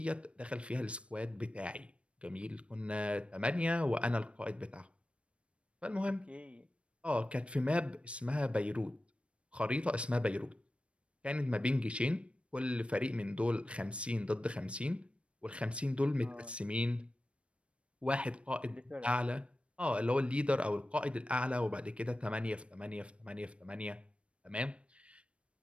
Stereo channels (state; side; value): late; left; 0.060 ms